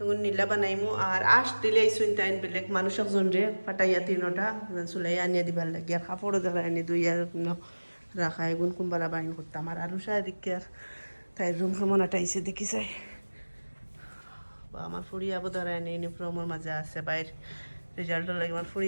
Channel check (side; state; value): both; inverted; correlation -1.00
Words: এখন নীলা বানাইমু আর আশ দিলে আইসুন টাইম বেলেগ মানুষ একজন রে ফাটাইয়া 3টা চুলাই আনিয়া দিবার লাগে আর কাপড়ও দেখা আনি দুইয়া রাখা এগুন কোনবালা বাইন করতাম আর আরো সারিকে আর তাই রুম কেমন আটাইছে দেখি চাই আমার ফুড়ি আবো ধরায় আনি ইউনিফর্মের মাঝে আছে বাইর রেজাল্টের লাগে আমার